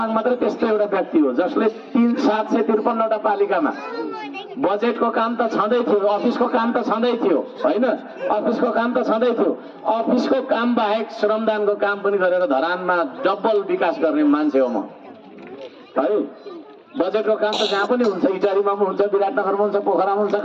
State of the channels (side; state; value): both; identical; correlation 1.00